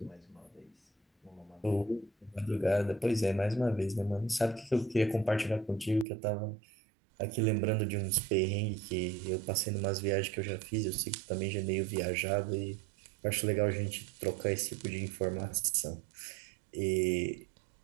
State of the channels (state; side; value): drops out; left; at 6.1 s